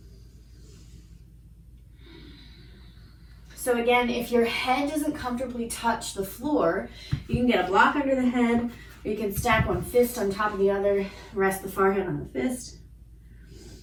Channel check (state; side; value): identical; both; correlation 1.00